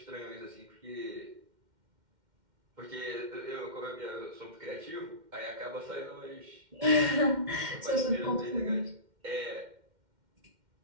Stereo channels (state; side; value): late; left; 2.1 ms